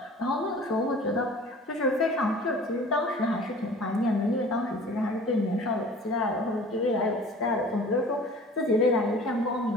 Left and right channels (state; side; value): normal; both; correlation 0.45